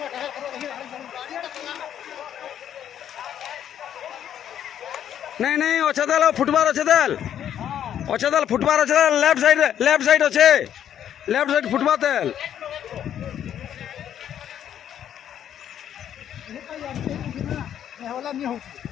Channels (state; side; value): quieter; right; 10.0 dB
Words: नहीं अच्छे देल फुटबार अच्छे देल फुटबार अच्छे देल लेफ्ट साइड अच्छे लेफ्ट साइड फुटबार तेल